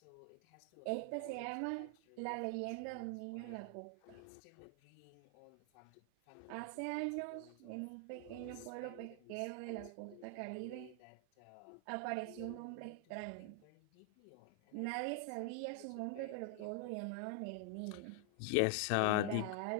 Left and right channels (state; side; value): different; both; correlation 0.00